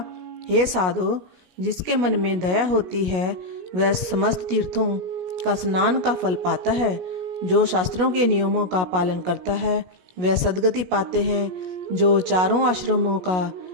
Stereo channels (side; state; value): left; late; 16 ms